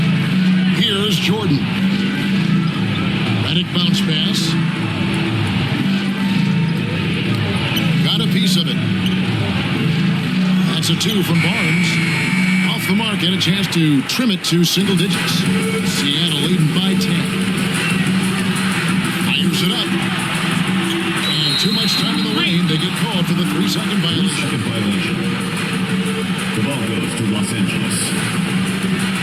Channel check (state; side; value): identical; both; correlation 1.00